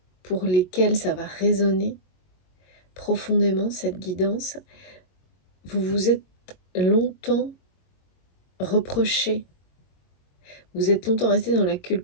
pour lesquels ça va résonner profondément cette guidance, vous vous êtes longtemps reproché. Vous êtes longtemps resté dans la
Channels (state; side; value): late; right; 22 ms